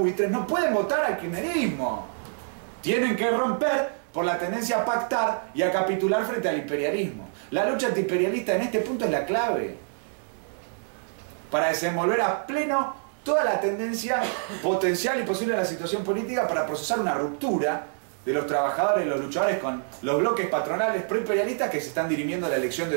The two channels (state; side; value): silent; left; digital silence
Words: no pueden votar al kirchnerismo. Tienen que romper por la tendencia a pactar y a capitular frente al imperialismo. La lucha antiimperialista en este punto es la clave para desenvolver a pleno toda la tendencia potencial y posible de la situación política para procesar una ruptura de los trabajadores y los luchadores con los bloques patronales proimperialistas que se están dirimiendo a la elección de